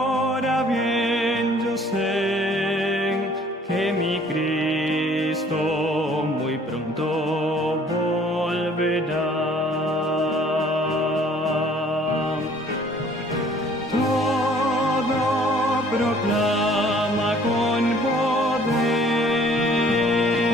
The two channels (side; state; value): both; normal; correlation 0.56